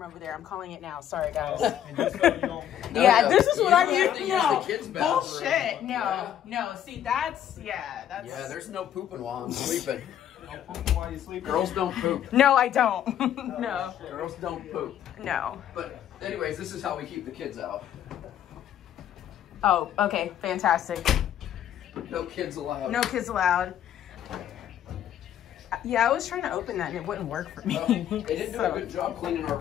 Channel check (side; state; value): right; quieter; 10.5 dB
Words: over there. I'm calling it now. Sorry, guys. And just so you don't... Yeah, No, this is what you I'm don't have to used. use No, the kids' bathroom. bullshit. No, Yeah. no. See, that's. Yeah, there's no pooping while I'm sleeping. Don't poop while you sleep. Girls don't poop. No, I don't. No, Girls don't poop. no. But anyways, this is how we keep the kids out. Oh, okay, fantastic. No kids allowed. No kids allowed. Yeah, I was trying to open that and it wouldn't work for me. They didn't do a good job cleaning our